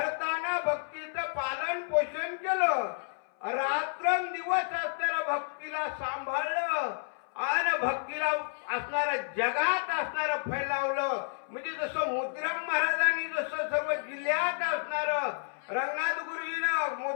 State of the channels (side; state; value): right; silent; 57 dB below the other